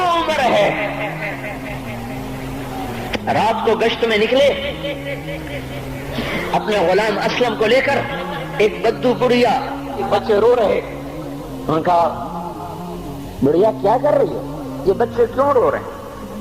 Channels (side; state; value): both; identical; correlation 1.00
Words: عمر ہے. رات کو گشت میں نکلے اپنے غلام اسلم کو لے کر. ایک بدو بڑھیا بچے رو رہے. ان کا بڑھیا کیا کر رہی ہے, یہ بچے کیوں رو رہے